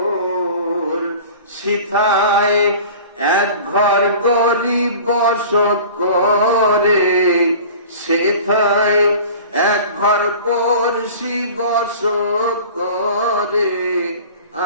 শ্রীনগর সিথায় এক ঘর গরিব বসত করে, সেথায় এক ঘর পড়শি বসত করে।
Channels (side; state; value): both; inverted; correlation -0.41